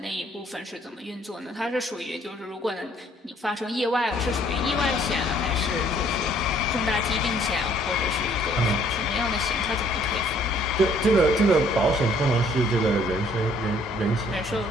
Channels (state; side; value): normal; both; correlation 0.61